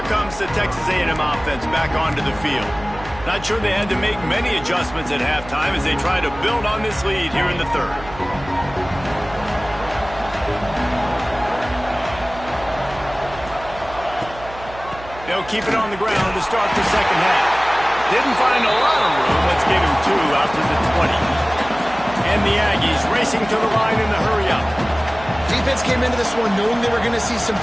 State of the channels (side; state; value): right; noise; hum, 16 dB below the sound